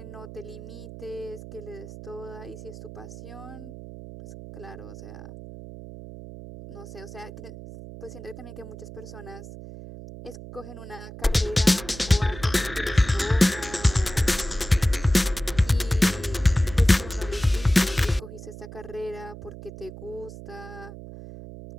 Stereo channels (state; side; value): noise; right; hum, 13 dB below the sound